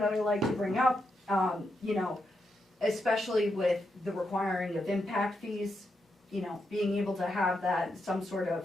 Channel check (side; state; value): both; normal; correlation 0.83